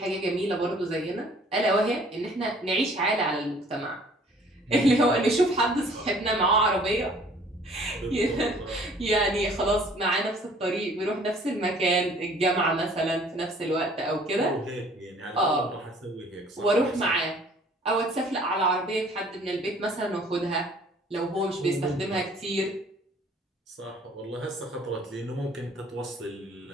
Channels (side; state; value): both; normal; correlation 0.55